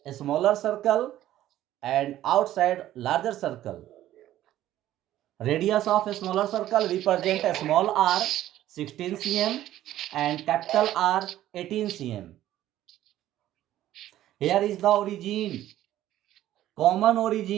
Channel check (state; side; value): quieter; left; 13.4 dB